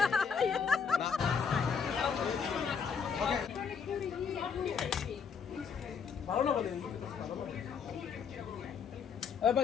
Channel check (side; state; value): right; quieter; 6.4 dB